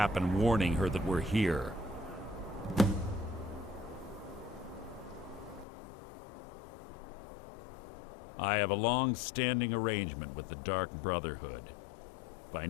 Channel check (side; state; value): right; drops out; at 5.7 s